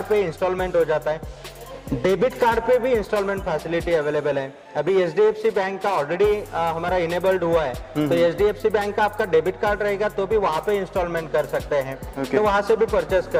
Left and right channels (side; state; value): both; identical; correlation 1.00